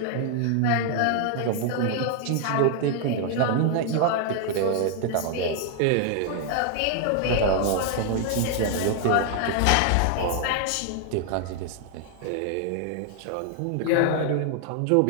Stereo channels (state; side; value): different; both; correlation 0.00